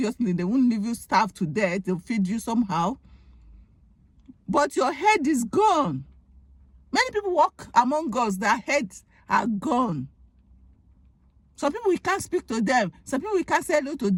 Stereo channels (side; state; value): both; identical; correlation 1.00